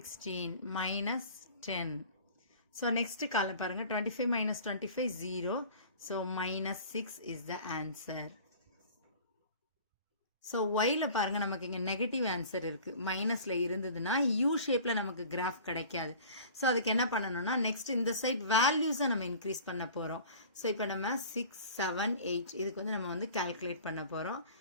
-10. so next column பாருங்க, 25 - 25 0, so -6 is the answer. So ஒய்ல பாருங்க, நமக்கு இங்கே நெகட்டிவ் ஆன்சர் இருக்கு. மைனஸ்ல இருந்ததுன்னா யூ ஷேப்ல நமக்கு கிராஃப் கிடைக்காது. ஸோ அதுக்கு என்ன பண்ணணும்னா, நெக்ஸ்ட் இந்த சைட் வேல்யூஸை நம்ம இன்க்ரீஸ் பண்ண போறோம். ஸோ இப்போ நம்ம 6 7 8 இதுக்கு வந்து நம்ம வந்து கால்குலேட் பண்ண போறோம்.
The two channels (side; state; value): both; inverted; correlation -0.44